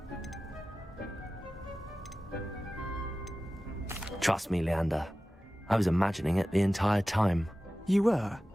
Trust me, Leander. I was imagining it the entire time. You were?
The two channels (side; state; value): both; normal; correlation 0.95